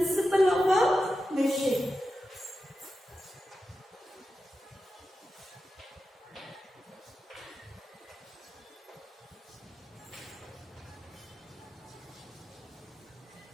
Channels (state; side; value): normal; both; correlation 0.91